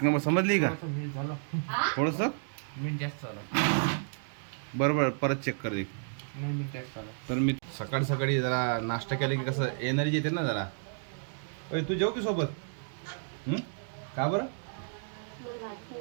नंबर. समजली का? थोडंसं मीठ जास्त झालं. बरोबर, परत चेक कर देख. तर मी सकाळी सकाळी जरा नाश्ता केला की कसं एनर्जी येते ना जरा. तू जेव की सोबत? का बरं?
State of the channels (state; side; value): silent; left; digital silence